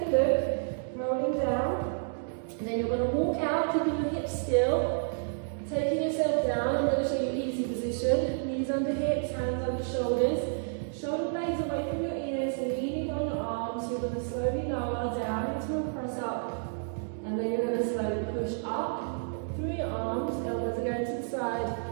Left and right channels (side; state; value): left; silent; digital silence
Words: a look, rolling down. And then you're going to walk out, keeping your hips still, taking yourself down. I'm going to show you easy position. Knees under hips, hands under shoulders. Shoulder blades away from your ears, leaning on your arms. You're going to slowly lower down into a press up. And then you're going to slowly push up through your arms. Elbows are going to the